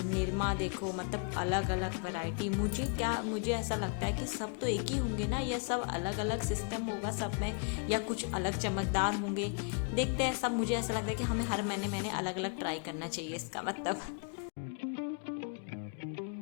निरमा देखो, मतलब अलग अलग वैरायटी। मुझे ऐसा लगता है कि सब तो एक ही होंगे ना, या सब अलग अलग सिस्टम होगा सब में, या कुछ अलग चमकदार होंगे। देखते हैं सब। मुझे ऐसा लगता है कि हमें हर महीने अलग अलग ट्राई करना चाहिए, इसका मतलब।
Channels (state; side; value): quieter; right; 37.4 dB